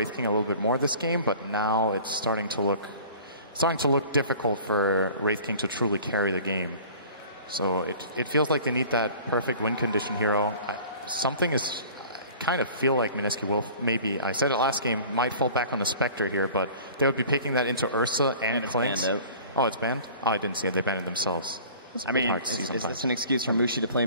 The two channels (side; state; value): both; inverted; correlation -0.45